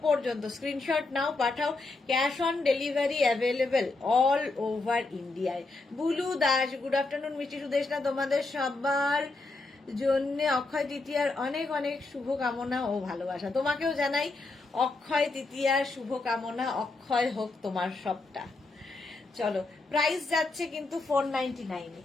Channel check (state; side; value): quieter; right; 3.4 dB